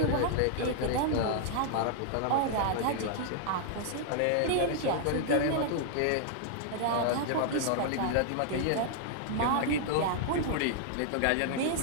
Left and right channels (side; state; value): both; different; correlation -0.01